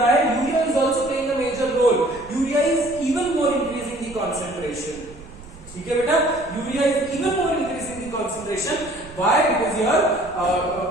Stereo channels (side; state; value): right; noise; rumble, 19 dB below the sound